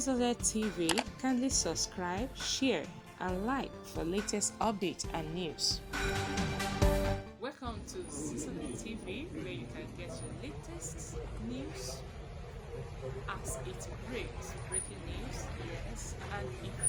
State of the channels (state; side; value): identical; both; correlation 1.00